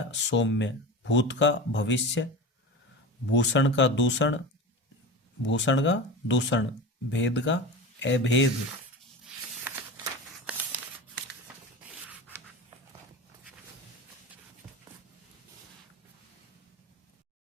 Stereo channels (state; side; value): normal; both; correlation 0.28